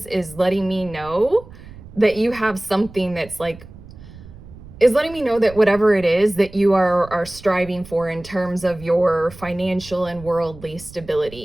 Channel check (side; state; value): right; noise; rumble, 18 dB below the sound